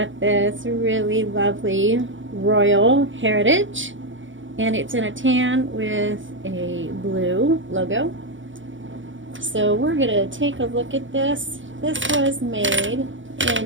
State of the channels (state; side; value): late; left; 0.56 ms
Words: this really lovely Royal Heritage, and it's in a tan with a blue logo. So we're gonna take a look at this. This was made